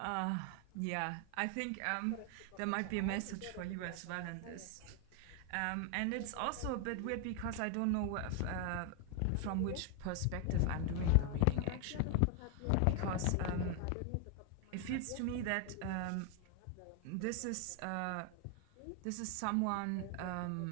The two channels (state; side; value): different; both; correlation 0.00